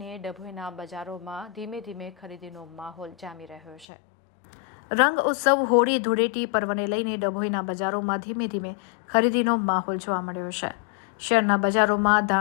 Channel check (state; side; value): drops out; right; at 3.9 s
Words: ડભોઈના બજારોમાં ધીમે ધીમે ખરીદીનો માહોલ જામી રહ્યો છે। રંગ ઉત્સવ હોળી ધૂળેટી પર્વને લઈને ડભોઈના બજારોમાં ધીમે ધીમે ખરીદીનો માહોલ જોવા મળ્યો છે। શહેરના બજારોમાં